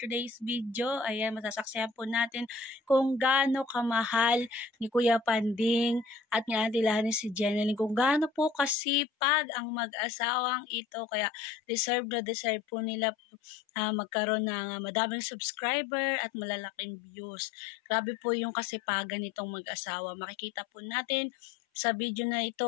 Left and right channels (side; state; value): right; drops out; at 8.8 s